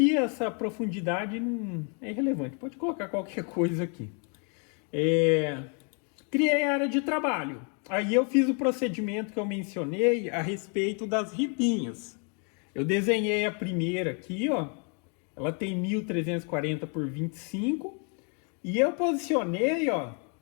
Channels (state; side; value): quieter; right; 38.7 dB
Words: essa profundidade não é irrelevante, pode colocar qualquer coisa aqui. Criei a área de trabalho. Aí eu fiz o procedimento que eu mencionei a respeito das ripinhas. Eu desenhei a primeira aqui, ó. Ela tem 1.340 por 25. E eu posicionei, ó,